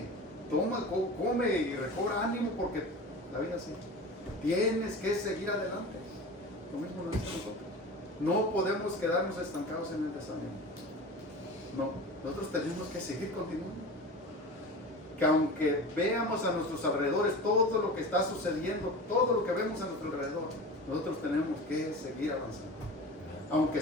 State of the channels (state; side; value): normal; both; correlation 0.33